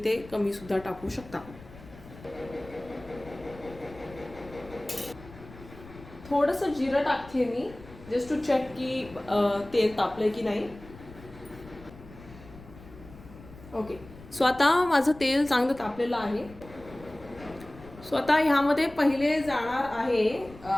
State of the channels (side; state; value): left; noise; rumble, 19 dB below the sound